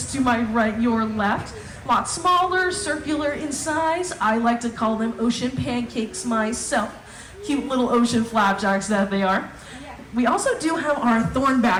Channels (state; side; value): identical; both; correlation 1.00